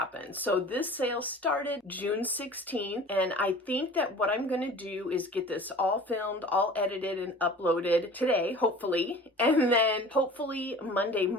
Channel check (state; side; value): normal; both; correlation 0.42